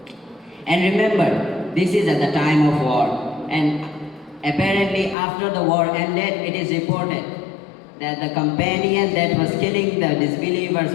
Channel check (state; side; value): drops out; right; at 5.2 s